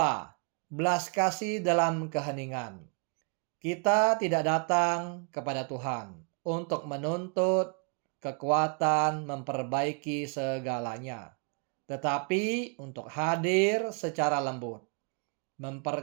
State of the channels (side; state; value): left; quieter; 36.8 dB